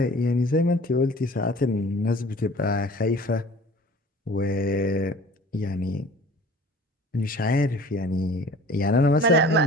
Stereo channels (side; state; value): both; normal; correlation 0.46